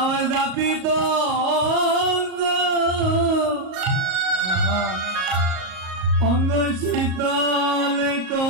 দাবি তো অঙ্গ শীতল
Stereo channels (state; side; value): late; left; 38 ms